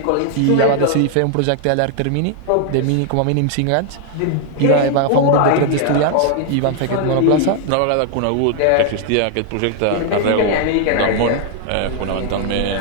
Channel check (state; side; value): different; both; correlation 0.00